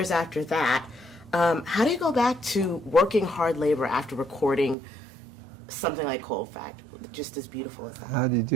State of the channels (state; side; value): drops out; left; at 4.8 s